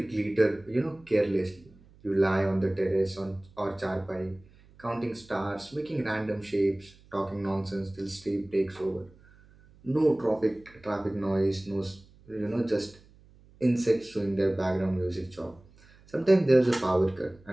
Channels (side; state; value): right; noise; hum, 26 dB below the sound